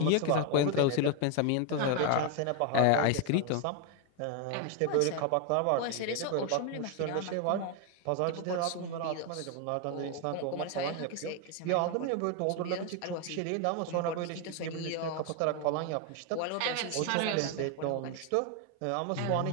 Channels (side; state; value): both; different; correlation 0.01